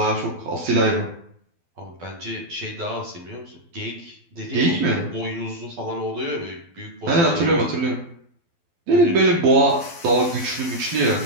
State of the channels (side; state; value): left; late; 12 ms